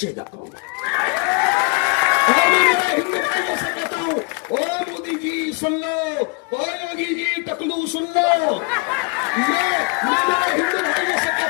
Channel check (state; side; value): quieter; right; 29.8 dB